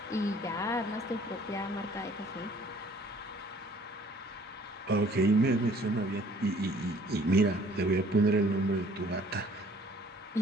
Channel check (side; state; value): both; normal; correlation 0.56